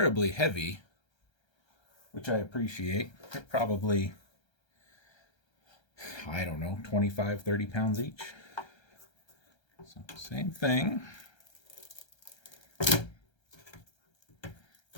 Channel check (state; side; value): late; right; 1.3 ms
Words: heavy, which I appreciate. They're probably, I don't know, 25, 30 pounds each. So same thing.